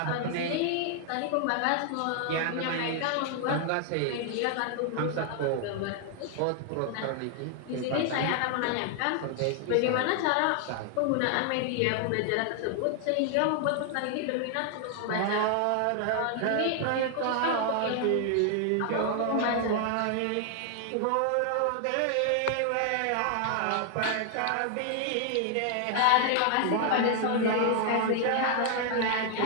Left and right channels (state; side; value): different; both; correlation 0.00